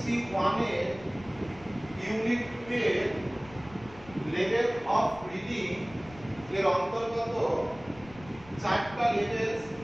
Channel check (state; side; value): noise; left; rumble, 20 dB below the sound